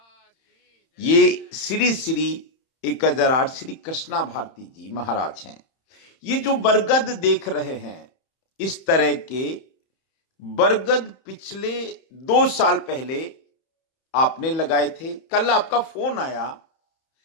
ये श्री श्री 1008 श्री कृष्णा भारती जी महाराज हैं। ये जो बरगद देख रहे हैं, इस तरह के बरगद पिछले 2 साल पहले आपने लगाए थे। कल आपका फोन आया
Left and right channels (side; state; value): right; late; 31 ms